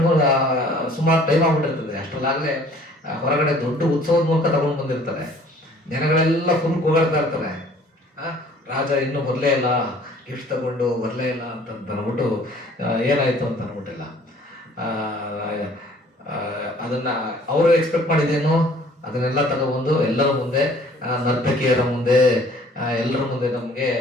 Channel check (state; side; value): normal; both; correlation 0.54